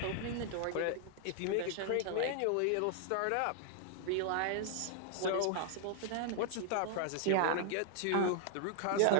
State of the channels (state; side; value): different; both; correlation -0.01